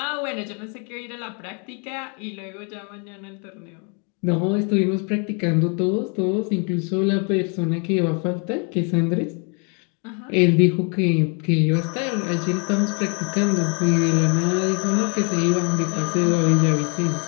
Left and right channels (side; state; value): right; quieter; 37.5 dB